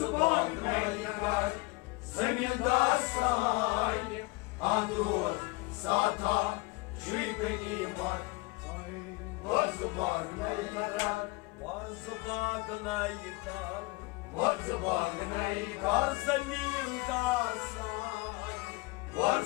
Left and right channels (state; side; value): quieter; right; 23.9 dB